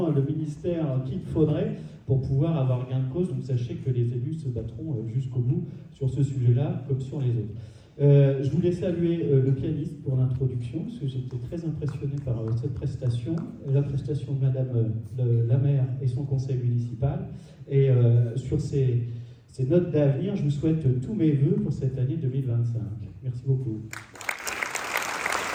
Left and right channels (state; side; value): identical; both; correlation 1.00